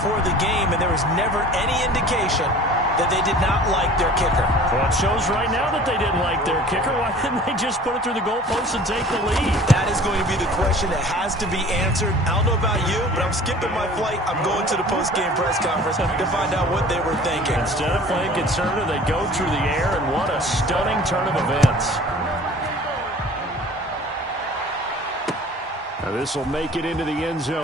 the game, and there was never any indication that they did not like their kicker. Well, it shows right now that they didn't like their kicker. Why didn't they just put it through the goalpost and take the lead? That is going to be the question that has to be answered. I don't know about you, but I'm skipping my flight. I'm going to the post-game press conference to find out what they were thinking. Instead of playing conservative, they go through the air, and what a stunning turn of events. Now this will make it into the end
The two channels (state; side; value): normal; both; correlation 0.46